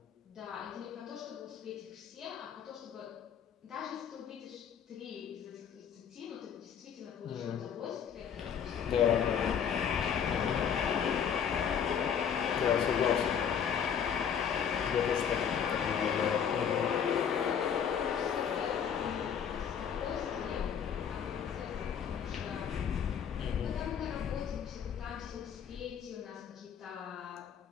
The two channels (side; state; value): right; quieter; 7.9 dB